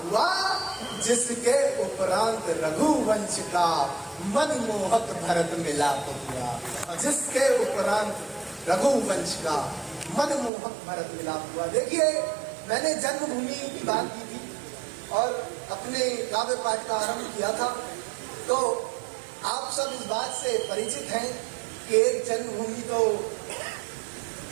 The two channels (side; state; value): left; drops out; at 10.5 s